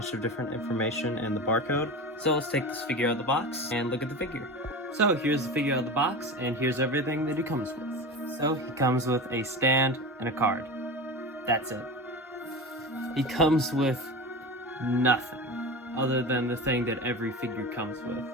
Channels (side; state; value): both; normal; correlation 0.28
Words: of different information and the barcode. So let's take this figure out of the box and look at the figure. So here's the figure out of the box and here's everything that he comes with. So he comes with a stand and a card. That's it. He comes with nothing other than the thing that every figure comes with.